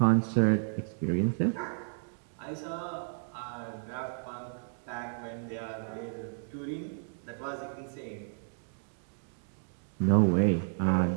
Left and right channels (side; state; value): left; silent; digital silence